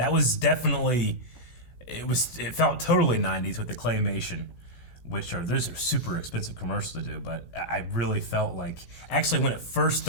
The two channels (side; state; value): right; late; 16 ms